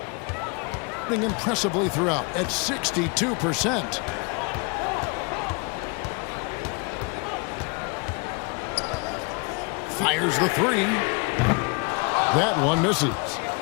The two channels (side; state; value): right; quieter; 31.4 dB